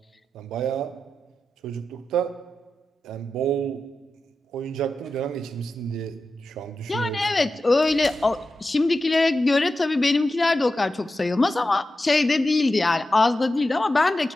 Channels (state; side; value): normal; both; correlation 0.91